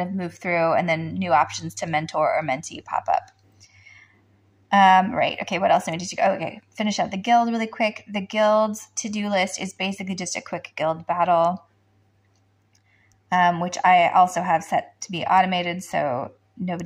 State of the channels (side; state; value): both; identical; correlation 1.00